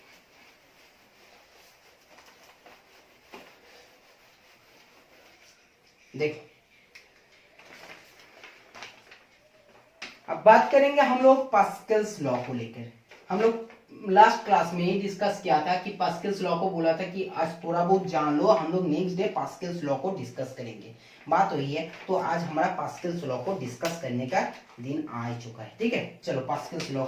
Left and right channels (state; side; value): identical; both; correlation 1.00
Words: देखो अब बात करेंगे हम लोग पास्कल्स लॉ को लेकर। हम लोग लास्ट क्लास में ही डिस्कस किया था कि पास्कल्स लॉ को बोला था कि आज थोड़ा बहुत जान लो, हम लोग नेक्स्ट डे पास्कल्स लॉ को डिस्कस करेंगे, बात वही है। तो आज हमारा पास्कल्स लॉ को डिस्कस करने का दिन आ चुका है, ठीक है। चलो पास्कल्स लॉ